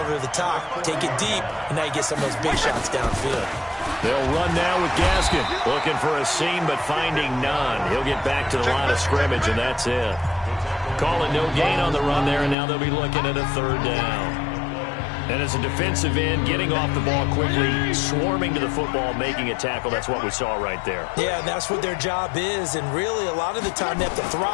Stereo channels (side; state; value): right; drops out; at 12.6 s